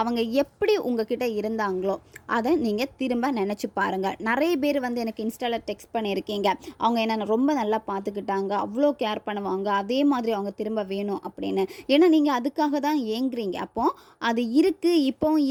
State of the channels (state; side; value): identical; both; correlation 1.00